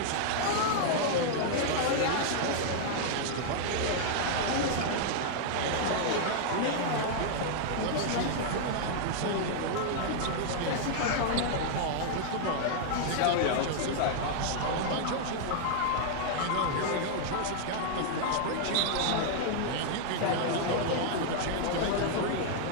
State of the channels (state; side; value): different; both; correlation -0.01